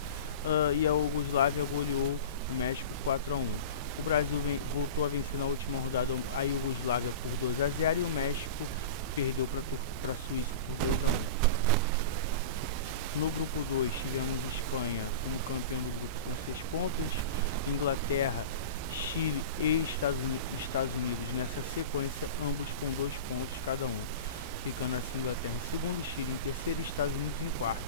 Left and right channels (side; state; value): both; inverted; correlation -0.32